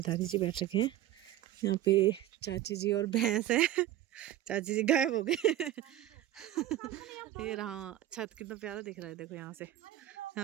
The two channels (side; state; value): left; quieter; 13.3 dB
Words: दादी जी बैठ रखे हैं। यहाँ पे चाची जी और भैंस है। चाची जी गायब हो गए। ये रहा छत, कितना प्यारा दिख रहा है देखो यहाँ से।